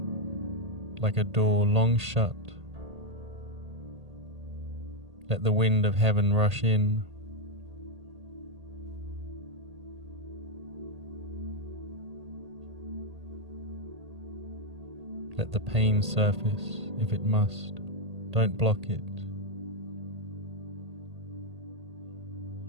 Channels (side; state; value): left; late; 1.8 ms